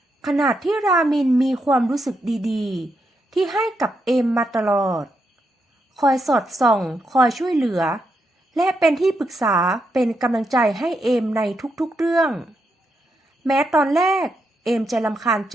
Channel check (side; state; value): both; normal; correlation 0.82